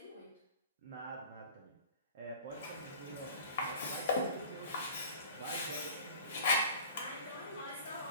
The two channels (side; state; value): both; inverted; correlation -0.43